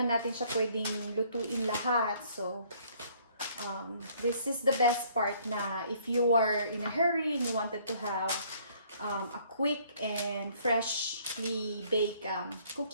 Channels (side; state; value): both; inverted; correlation -0.61